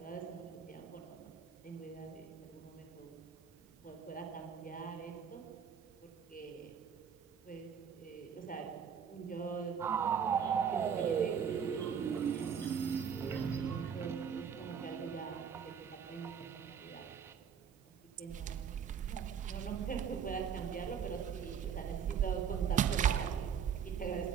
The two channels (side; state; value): left; quieter; 7.4 dB